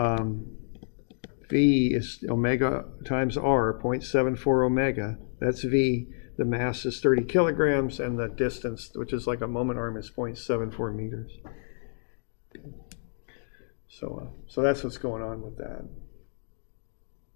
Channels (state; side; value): silent; right; digital silence